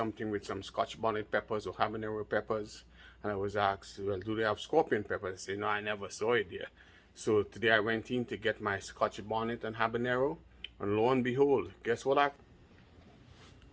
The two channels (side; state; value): both; identical; correlation 1.00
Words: with some Scotch bonnet peppers or habanero peppers, and I was asked, well, do they have scorpion peppers? I say, no, I never saw it there. So today I went in to get my Scotch bonnet and habanero, and lo and behold, guess what I